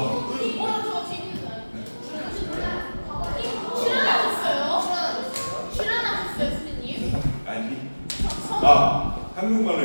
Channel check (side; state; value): both; inverted; correlation -1.00